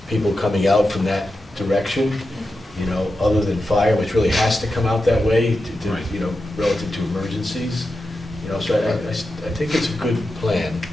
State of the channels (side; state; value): both; normal; correlation 0.90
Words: people coming out from that direction, you know, other than fire, which really has to come out that way to you know, relative to emergencies. You know, so I think it's a good plan.